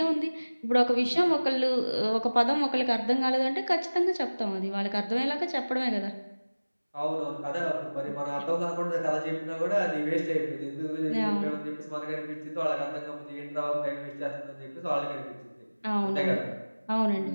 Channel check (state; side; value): inverted; both; correlation -1.00